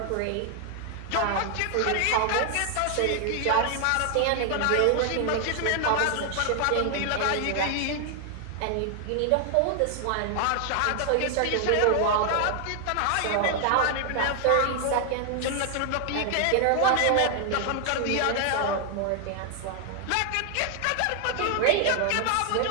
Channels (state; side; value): different; both; correlation 0.00